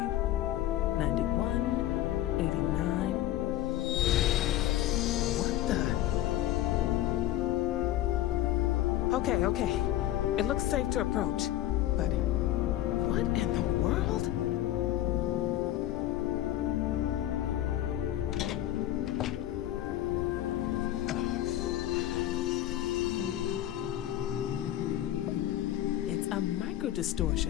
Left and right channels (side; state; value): right; quieter; 13.5 dB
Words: 91, 89. What the? Okay. It looks safe to approach. But what in the world? It's a